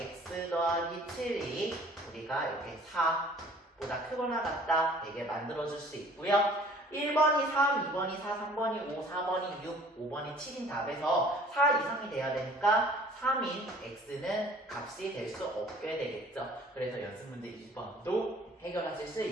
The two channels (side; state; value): both; normal; correlation 0.52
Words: 더하기 7이 우리가 이렇게 4보다 크거나 같다 되게 만들어줄 수 있고요. 1번이 3, 2번이 4, 3번이 5, 4번이 6, 5번이 7인 답에서 4 이상이 돼야 되니까 3인 x는 값이 될 수 없게 되겠죠. 그래서 연습 문제 2번도 해결하실 수